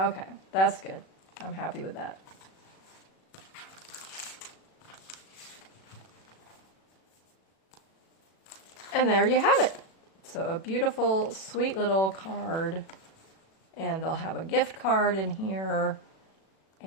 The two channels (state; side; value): late; right; 36 ms